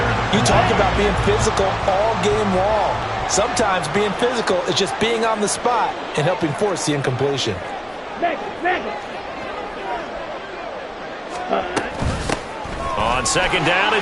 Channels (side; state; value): both; identical; correlation 1.00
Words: you talked about being physical all game long. Sometimes being physical is just being on the spot and helping force the incompletion. On second down,